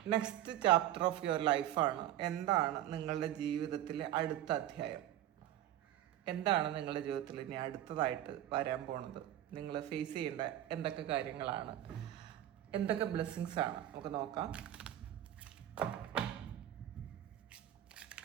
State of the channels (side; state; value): left; quieter; 12.5 dB